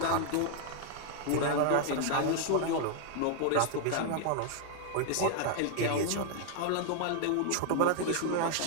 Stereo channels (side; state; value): both; different; correlation 0.00